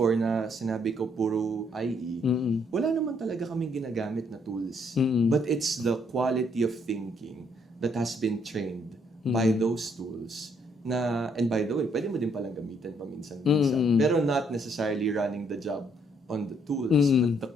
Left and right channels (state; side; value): normal; both; correlation 0.70